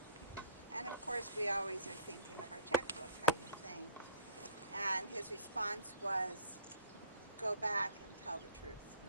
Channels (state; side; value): inverted; both; correlation -0.51